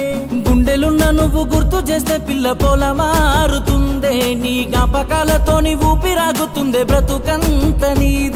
గుండెలున్న నువ్వు గుర్తు చేస్తే పిల్ల పోల మారుతుందే నీ జ్ఞాపకాలతోని ఊపిరాగుతుందే బ్రతుకంత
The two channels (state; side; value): identical; both; correlation 1.00